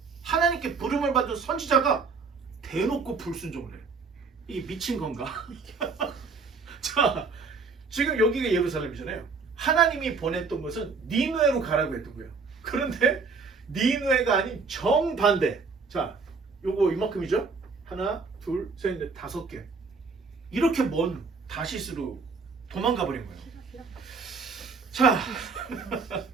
하나님께 부름을 받은 선지자가 대놓고 불순종을 해요. 이게 미친 건가? 자, 지금 여기가 예루살렘이잖아요. 하나님이 보냈던 것은 니느웨로 가라고 했던 거예요. 그런데 니느웨가 아닌 정반대. 자, 요거 이만큼이죠? 하나, 둘, 셋, 넷, 5개. 이렇게 먼 다시스로 도망가 버린 거예요. 자,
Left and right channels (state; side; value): quieter; left; 4.7 dB